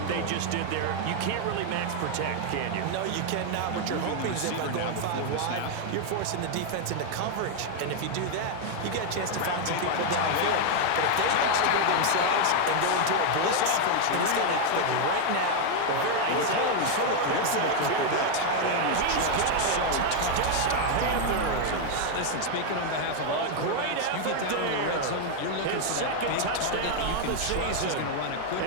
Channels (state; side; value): different; both; correlation 0.01